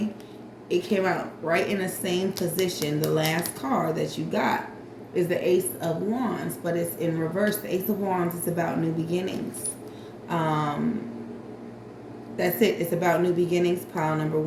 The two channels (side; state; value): both; identical; correlation 1.00